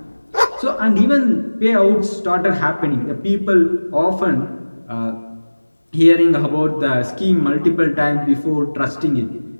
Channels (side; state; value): both; inverted; correlation -1.00